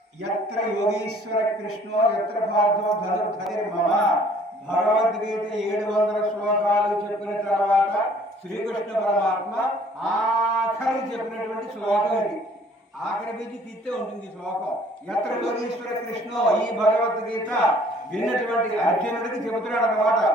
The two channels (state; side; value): normal; both; correlation 0.56